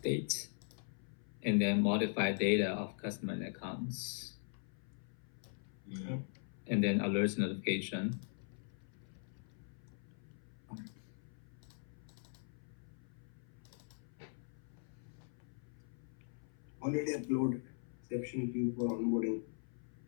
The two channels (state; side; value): silent; right; 50 dB below the other